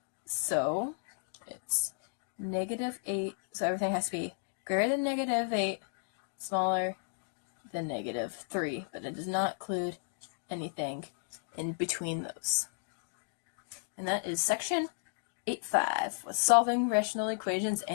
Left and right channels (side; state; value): right; silent; digital silence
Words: So it's negative 8. So everything has to be greater than negative 8, smaller than negative 3. But it does not include anything in between those. And that is section 8.5 with solving rational equations